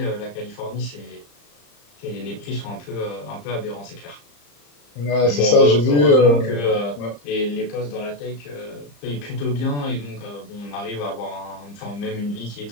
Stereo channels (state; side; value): late; right; 35 ms